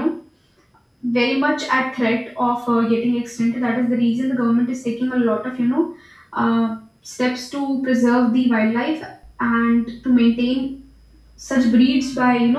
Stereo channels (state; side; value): identical; both; correlation 1.00